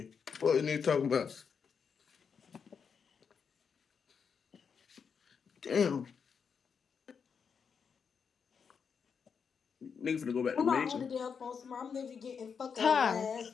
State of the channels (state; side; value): quieter; right; 6.4 dB